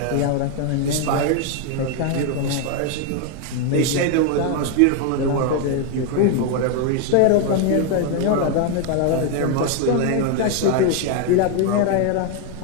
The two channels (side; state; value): both; different; correlation 0.01